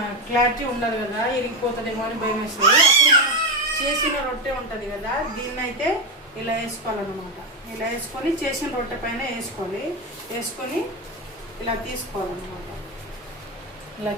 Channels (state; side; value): normal; both; correlation 0.11